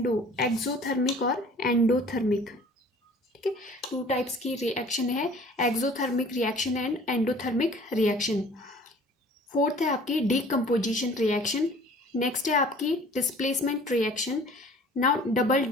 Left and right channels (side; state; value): both; normal; correlation 0.49